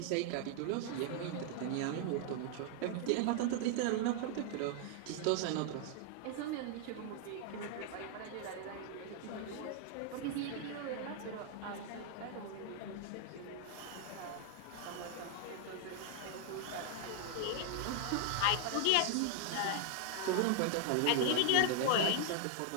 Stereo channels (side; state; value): both; different; correlation 0.00